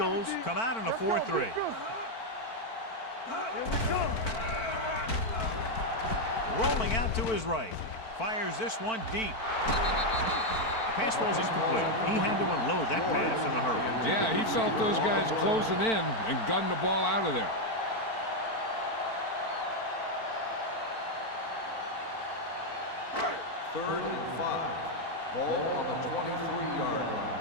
come out in a 4-3. Here we go. Rolling out to his right. Fires this one deep. The pass ball's incomplete. He had to unload that pass in a hurry. Yeah, he felt those guys closing in and gunned the ball out of there. Third and 5. Ball on the 23-yard line.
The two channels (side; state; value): right; late; 4.5 ms